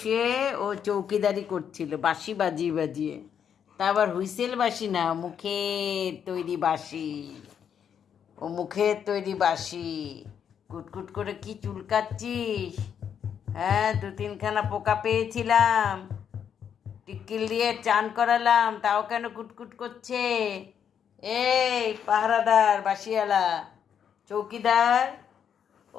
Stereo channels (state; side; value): quieter; right; 8.1 dB